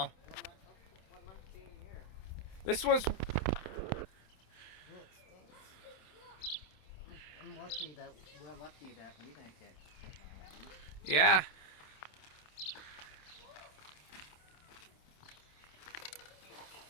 What month came here? This was... I'm lucky that we're lucky that we didn't get spit by a llama. Yeah.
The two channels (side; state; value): right; late; 27 ms